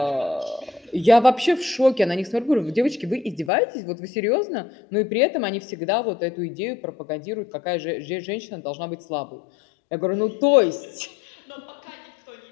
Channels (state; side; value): drops out; right; at 3.5 s